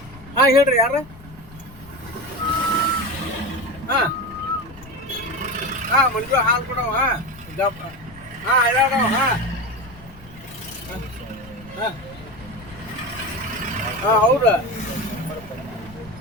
ಹೇಳ್ರಿ ಯಾರ ಮಂಜು ಹಾಲು ಕೊಡವ. ಹೌದಾ,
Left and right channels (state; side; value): noise; left; rumble, 20 dB below the sound